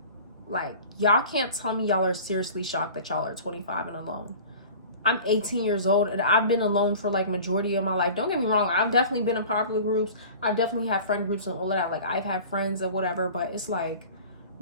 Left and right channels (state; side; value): inverted; both; correlation -0.41